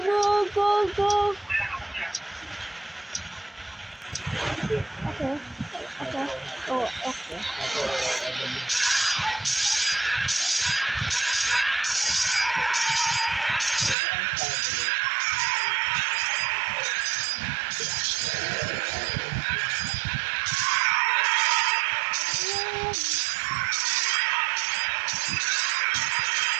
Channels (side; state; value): left; drops out; at 14.0 s